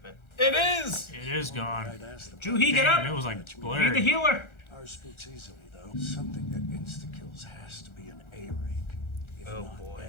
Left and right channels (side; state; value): right; late; 1.4 ms